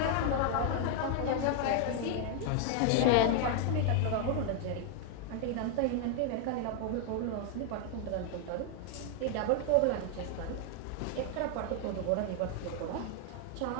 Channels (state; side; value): different; both; correlation 0.00